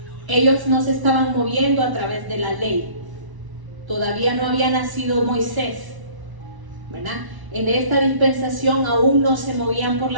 Ellos no se estaban moviendo a través de la ley. Todavía no había nacido Moisés, ¿verdad? En esta dispensación aún no se movían por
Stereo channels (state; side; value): late; left; 1.0 ms